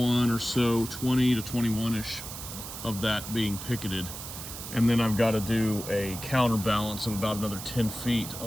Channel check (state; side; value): noise; right; hiss, 10 dB below the sound